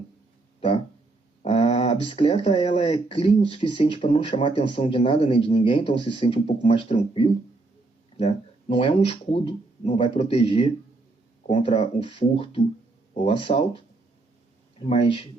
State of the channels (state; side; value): quieter; left; 3.3 dB